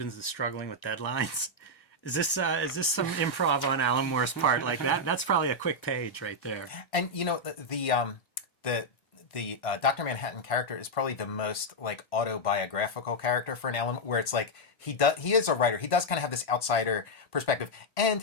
is struggling with deadlines. Is this some improv on Alan Moore's part? Like that's probably a quick page right there. And you know the Dr. Manhattan character is probably the most like autobiographical character for an Alan, where it's like he is a writer. He does kind of have this outsider perspective,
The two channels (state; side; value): late; right; 1.5 ms